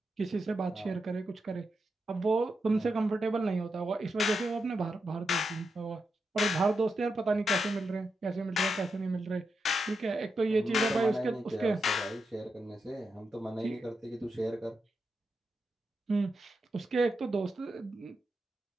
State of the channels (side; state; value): both; normal; correlation 0.86